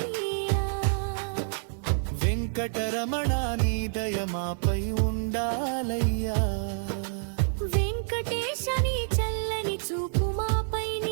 వెంకటరమణ నీ దయ మాపై ఉండాలయ్యా వెంకటేశ నీ చల్లని చూపు మాపై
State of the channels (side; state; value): left; silent; 58 dB below the other